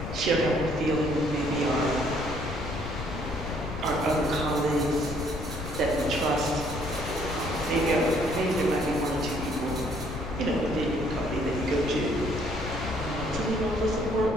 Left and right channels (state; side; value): noise; left; rumble, 7 dB below the sound